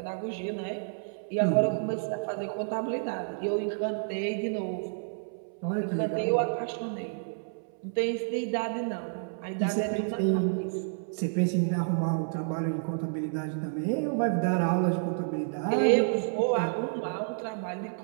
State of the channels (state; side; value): silent; left; 58 dB below the other